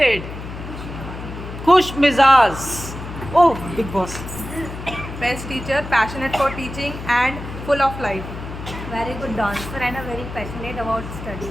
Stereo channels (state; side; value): noise; left; hum, 10 dB below the sound